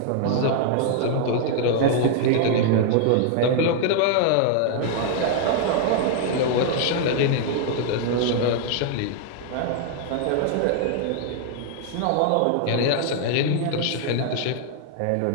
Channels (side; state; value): both; different; correlation 0.00